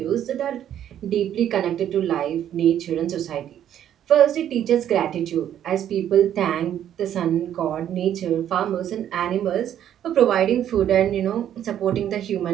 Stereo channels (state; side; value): quieter; left; 10.5 dB